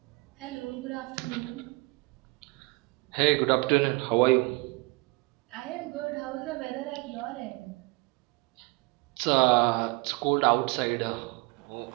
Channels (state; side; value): quieter; left; 26.4 dB